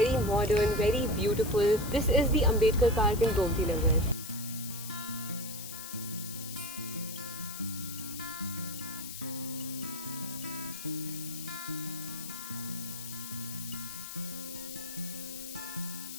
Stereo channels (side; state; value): left; noise; hiss, 9 dB below the sound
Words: modern, very beautiful. This is the Ambedkar Park in Gomti Nagar.